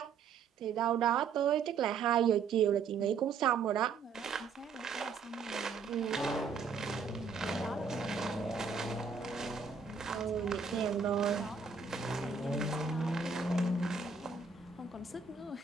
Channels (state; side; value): quieter; left; 5.6 dB